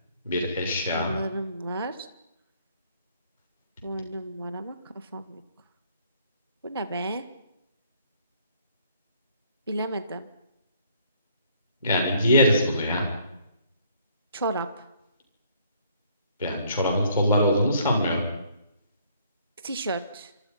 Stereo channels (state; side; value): inverted; both; correlation -0.63